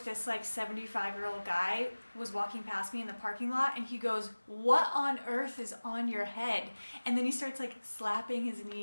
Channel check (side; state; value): both; inverted; correlation -1.00